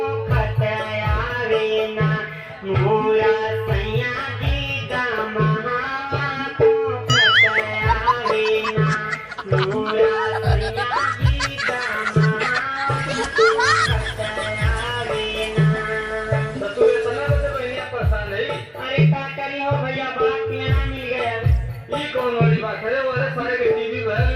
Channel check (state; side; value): identical; both; correlation 1.00